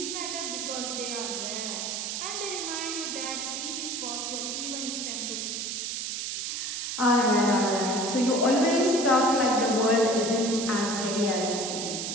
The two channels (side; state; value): right; noise; hiss, 3 dB below the sound